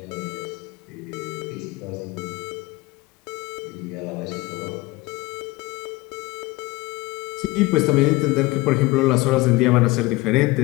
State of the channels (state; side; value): quieter; right; 21.2 dB